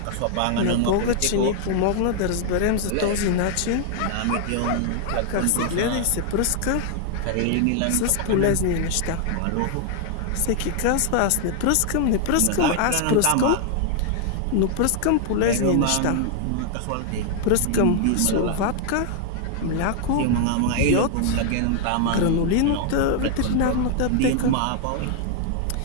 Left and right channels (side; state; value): both; different; correlation 0.00